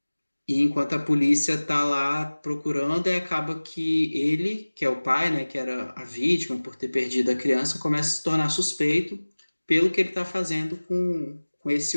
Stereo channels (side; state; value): both; inverted; correlation -1.00